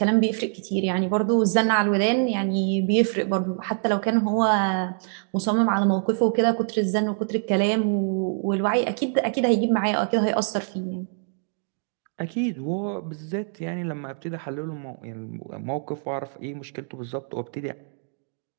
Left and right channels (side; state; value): left; silent; 62 dB below the other